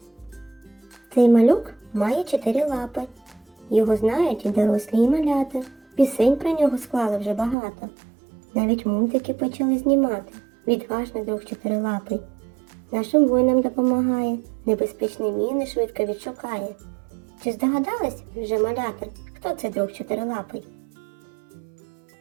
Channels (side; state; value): left; drops out; at 7.6 s